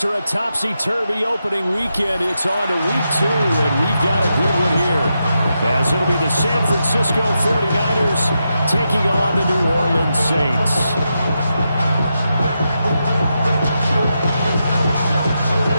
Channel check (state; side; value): inverted; both; correlation -0.86